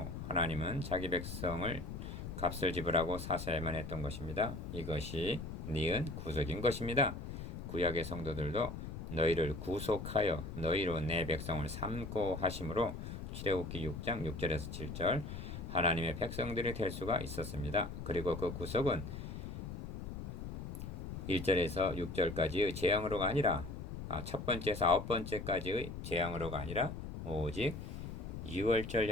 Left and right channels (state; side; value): noise; left; rumble, 7 dB below the sound